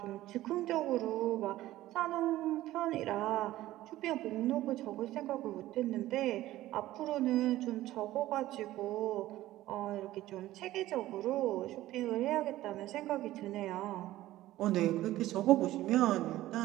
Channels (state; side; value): quieter; left; 15.5 dB